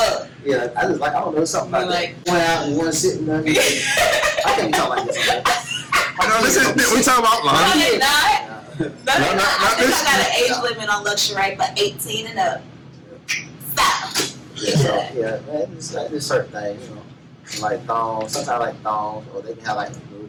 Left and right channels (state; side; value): identical; both; correlation 1.00